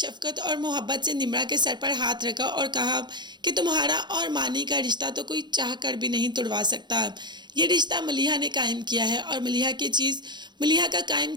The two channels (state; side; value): late; left; 0.21 ms